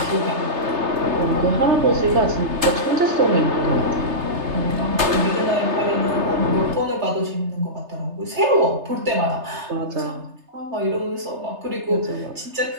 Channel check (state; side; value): late; left; 3.3 ms